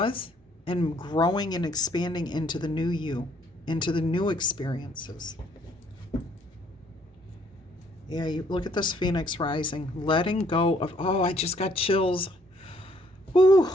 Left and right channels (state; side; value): normal; both; correlation 0.65